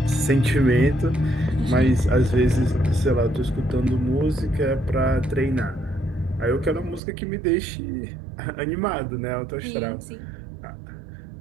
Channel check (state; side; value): drops out; left; at 7.0 s